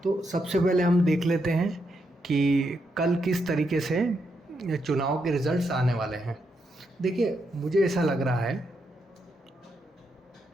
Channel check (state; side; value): normal; both; correlation 0.81